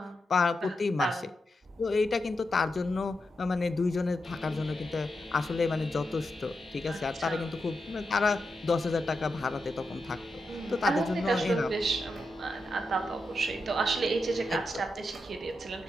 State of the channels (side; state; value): both; normal; correlation 0.87